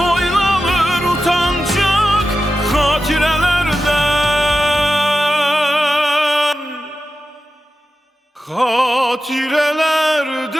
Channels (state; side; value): normal; both; correlation 0.92